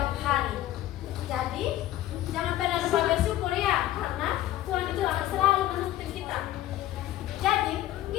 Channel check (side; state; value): right; quieter; 14.2 dB